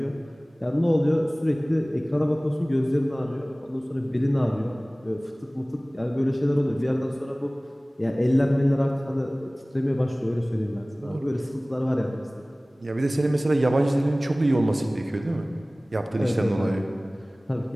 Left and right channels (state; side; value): normal; both; correlation 0.98